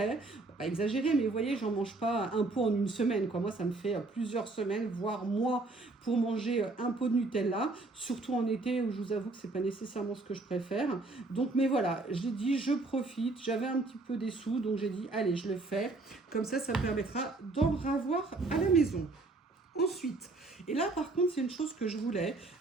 pas exagérer, mais vous voyez, j'en mange pas un pot en une semaine, quoi. Moi, ça me fait plusieurs semaines, voire mois, pour manger un pot de Nutella, surtout en été où je vous avoue que c'est pas nécessairement ce que je préfère. Donc, mais voilà, j'ai dit, je profite, j'avais un petit peu des sous, donc j'ai dit, allez, je le fais. Comme ça me permettra d'en avoir à la maison. Ensuite, et là par contre c'est une chose que je voulais,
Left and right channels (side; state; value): left; quieter; 3.3 dB